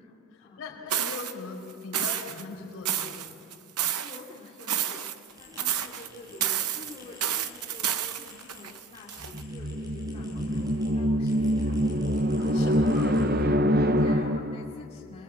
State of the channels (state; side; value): normal; both; correlation 0.52